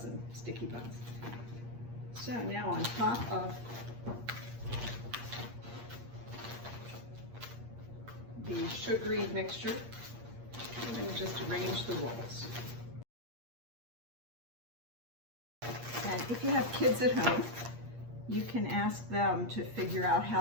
sticky buns. So now on top of the sugary mixture, I'm going to just arrange the rolls. And if you have kids at home, you can ask them to figure out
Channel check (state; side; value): late; left; 8.5 ms